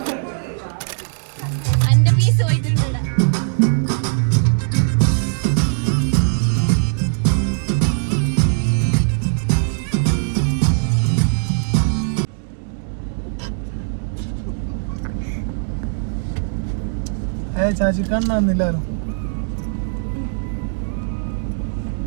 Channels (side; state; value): left; silent; digital silence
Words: and piece പോയിട്ടുണ്ട്. ചാച്ചി കണ്ണാന്നില്ലാലോ